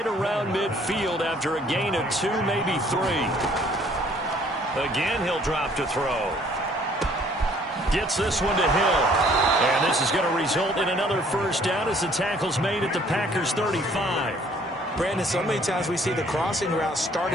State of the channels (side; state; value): both; normal; correlation 0.59